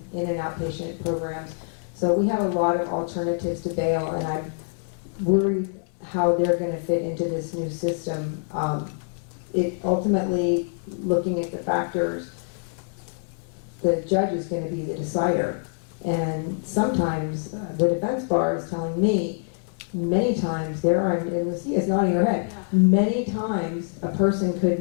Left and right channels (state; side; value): silent; right; 62 dB below the other